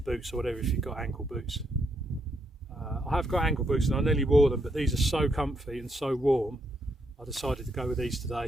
or whatever if you've got ankle boots. I have got ankle boots and I nearly wore them, but these are so comfy and so warm I decided to go with these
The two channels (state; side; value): normal; both; correlation 0.77